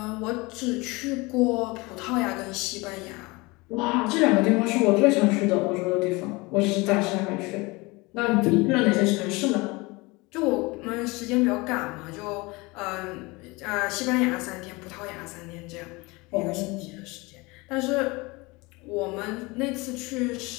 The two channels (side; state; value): right; quieter; 24.3 dB